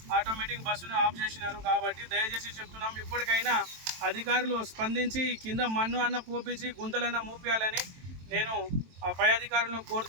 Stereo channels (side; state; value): left; late; 23 ms